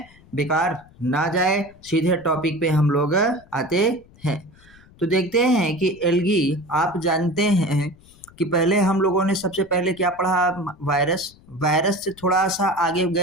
बेकार ना जाए। सीधे टॉपिक पे हम लोग आते हैं। तो देखते हैं कि एल्गी, आप जानते हैं कि पहले हम लोगों ने सबसे पहले क्या पढ़ा? वायरस से थोड़ा सा आगे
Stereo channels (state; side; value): noise; left; rumble, 26 dB below the sound